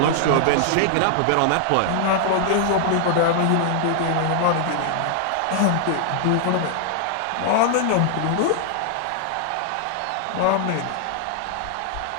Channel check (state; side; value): different; both; correlation 0.00